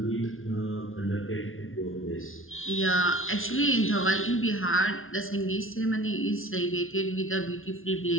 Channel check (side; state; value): right; late; 0.60 ms